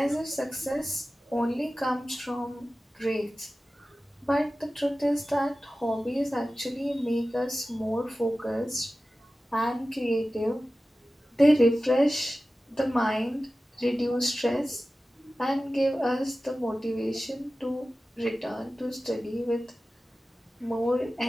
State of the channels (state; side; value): normal; both; correlation 0.95